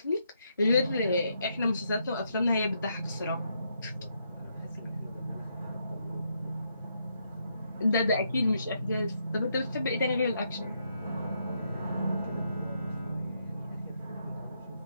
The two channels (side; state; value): both; inverted; correlation -0.78